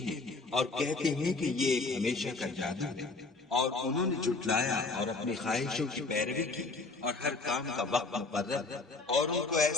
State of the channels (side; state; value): right; quieter; 3.6 dB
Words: اور کہتے ہیں کہ یہ ایک ہمیشہ کا جادو ہے، اور انہوں نے جھٹلایا اور اپنی خواہشوں کی پیروی کی، اور ہر کام کا وقت مقرر ہے، اور ان کو